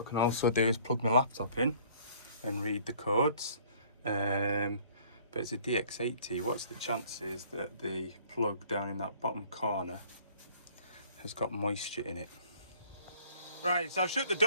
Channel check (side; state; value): both; inverted; correlation -0.56